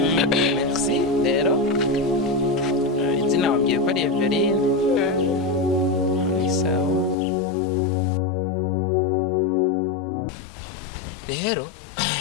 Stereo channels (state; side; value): drops out; right; at 7.2 s